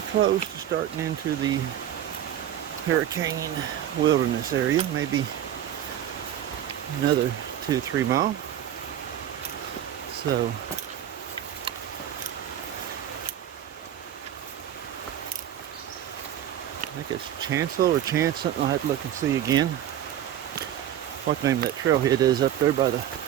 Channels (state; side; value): quieter; left; 10.9 dB